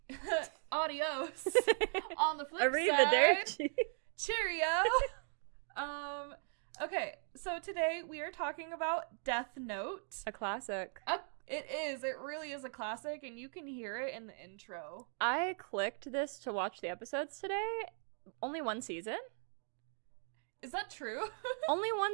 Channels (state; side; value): silent; left; 52 dB below the other